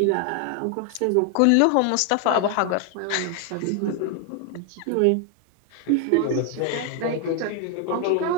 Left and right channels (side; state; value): both; different; correlation 0.01